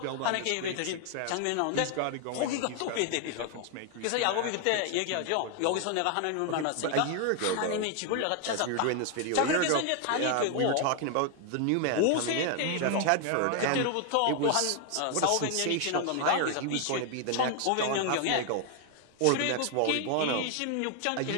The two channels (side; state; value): both; different; correlation 0.00